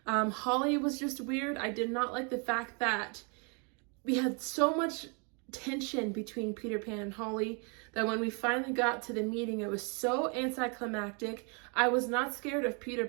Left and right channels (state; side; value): quieter; left; 35.5 dB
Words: Holly was just weird. I did not like the fact that we had so much tension between Peter Pan and Holly that when we finally got to the meeting, it was so anticlimactic. I was not scared of Peter